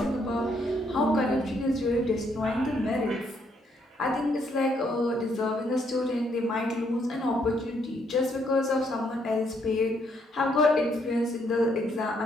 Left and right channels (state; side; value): normal; both; correlation 0.72